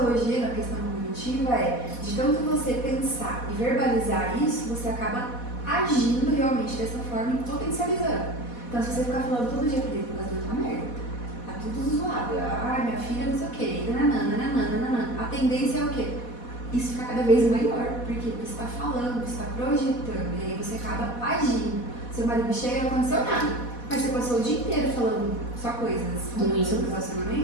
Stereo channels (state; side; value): late; right; 4.1 ms